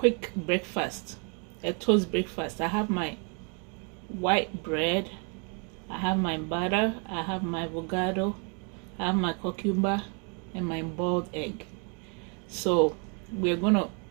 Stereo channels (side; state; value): left; quieter; 37.3 dB